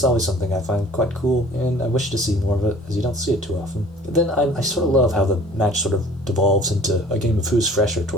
always something I find quite cool, and I wish to see more of it, as you don't see it too often. But then I sort of love how the match sort of devolves into a game of who's fresher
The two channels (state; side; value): normal; both; correlation 0.49